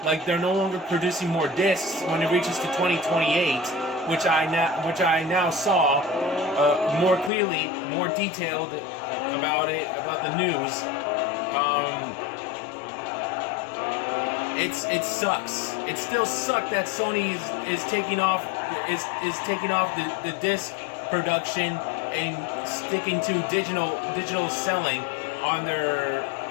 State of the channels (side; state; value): right; drops out; at 7.3 s